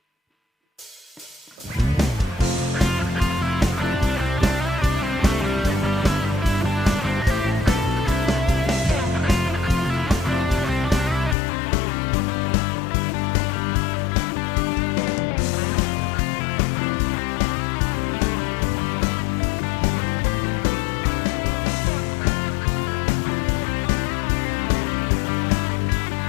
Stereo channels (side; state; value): right; drops out; at 11.4 s